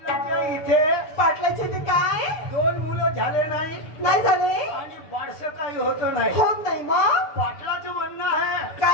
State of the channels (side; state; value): right; late; 6.7 ms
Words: इथे पाटलाचे ते काय दोन मुलं झाले नाही नाही झाले आणि बारसं काही होत नाही होत नाही मग पाटलाचं म्हणणं आहे